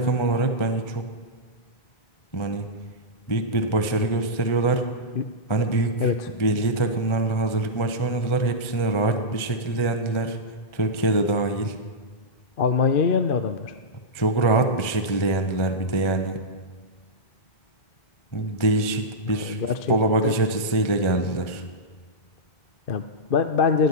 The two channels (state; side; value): late; right; 1.4 ms